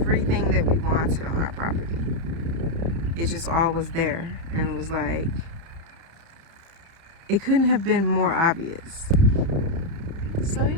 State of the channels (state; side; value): late; left; 30 ms